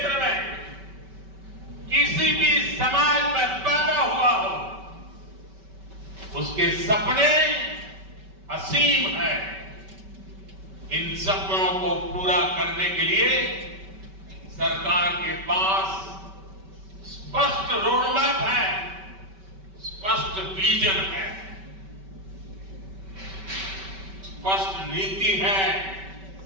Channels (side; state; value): left; late; 5.2 ms